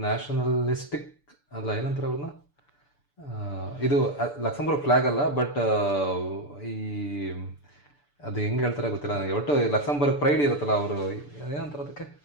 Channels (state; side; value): late; right; 6.9 ms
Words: ನ್ಯಾಷನಲಿಸ್ಟಿಕ್ ಅಲ್ಲ, ಏನಂತಾರೆ ಅವ್ರನ್ನ. ಇದು ಲಕ್ಸಂಬರ್ಗ್ ಫ್ಲ್ಯಾಗ್ ಅಲ್ಲ, ಬಟ್ ಈ ಅದು ಹೆಂಗೆ ಹೇಳ್ತಾರೆ ಗೊತ್ತಿಲ್ಲ ನನಗೆ. ಒಟ್ಟು ಲಕ್ಸಂಬರ್ಗ್ ಪ್ರೈಡ್ ಇರುತ್ತಲ್ಲ, ಅವರು ಏನಂತಾರೆ ಅದಕ್ಕೆ.